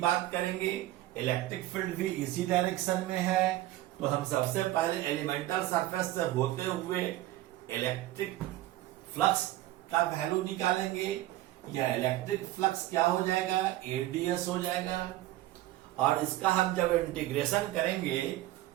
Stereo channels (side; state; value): left; quieter; 15.8 dB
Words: करेंगे। इलेक्ट्रिक फील्ड भी इसी डायरेक्शन में है, तो हम सबसे पहले एलिमेंटल सरफेस से होते हुए इलेक्ट्रिक फ्लक्स का वैल्यू निकालेंगे। यह इलेक्ट्रिक फ्लक्स क्या हो जाएगा? AdS हो जाएगा। और इसका हम जब इंटीग्रेशन करेंगे,